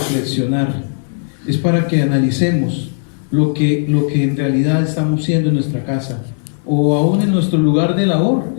es para que analicemos lo que en realidad estamos siendo en nuestra casa, o aún en nuestro lugar de labor,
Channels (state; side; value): silent; right; digital silence